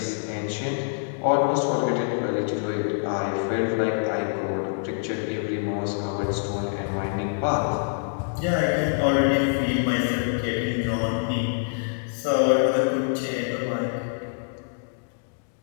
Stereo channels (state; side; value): silent; right; digital silence